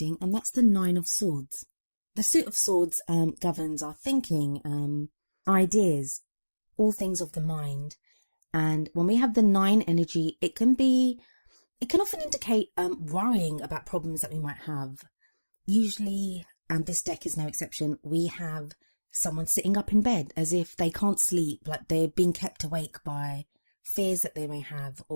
and that's the Nine of Swords. The Suit of Swords governs our thinking, ideas, all things of the mind. And when we have the 9 energy, it can often indicate worrying about problems that we might have. Usually, and this deck is no exception, we have someone sitting up in bed as if they can't sleep, like they're being kept awake by fears that they may have,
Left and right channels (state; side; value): inverted; both; correlation -1.00